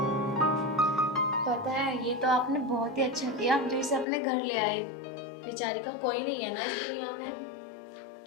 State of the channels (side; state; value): right; drops out; at 4.0 s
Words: पता है, ये तो आपने बहुत ही अच्छा किया जो इसे अपने घर ले आए। बेचारी का कोई नहीं है ना इस दुनिया में।